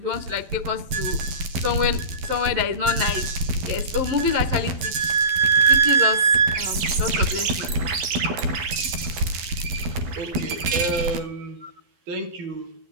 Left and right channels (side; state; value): left; late; 12 ms